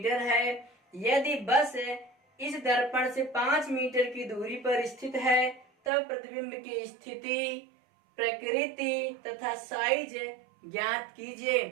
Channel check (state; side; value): drops out; left; at 5.9 s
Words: है। यदि बस इस दर्पण से 5 मीटर की दूरी पर स्थित है तब प्रतिबिंब की स्थिति, प्रकृति तथा साइज ज्ञात कीजिए।